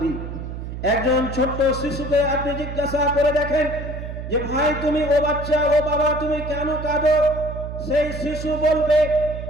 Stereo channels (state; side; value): noise; right; hum, 8 dB below the sound